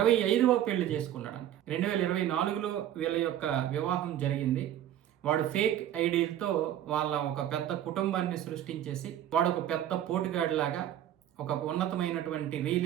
పెళ్లి చేసుకున్నాడు. 2024లో వీళ్ళ యొక్క వివాహం జరిగింది. వాడు ఫేక్ ఐడీలతో వాళ్ళ ఒక పెద్ద కుటుంబాన్ని సృష్టించేసి వాడు ఒక పెద్ద పోటుగాడిలాగా ఒక ఉన్నతమైనటువంటి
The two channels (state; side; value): quieter; left; 11.5 dB